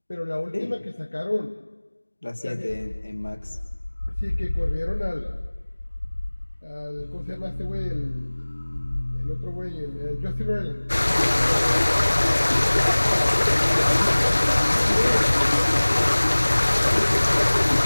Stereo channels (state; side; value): inverted; both; correlation -1.00